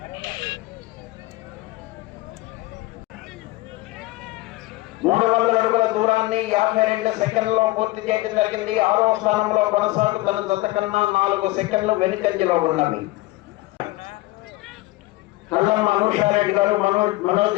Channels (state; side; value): quieter; right; 19.6 dB